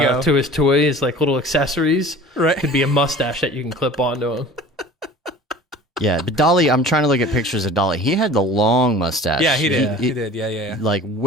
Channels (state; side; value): normal; both; correlation 0.42